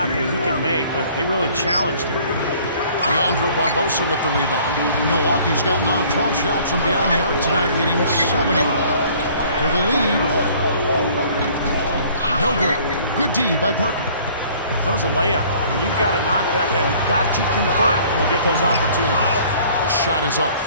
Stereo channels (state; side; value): inverted; both; correlation -0.54